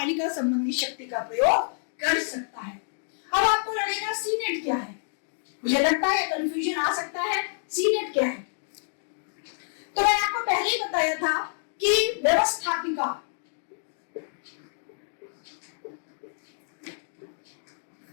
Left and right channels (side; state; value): right; silent; digital silence